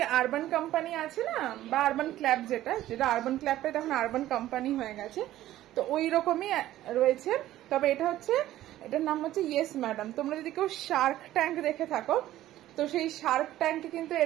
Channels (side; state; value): left; quieter; 14.1 dB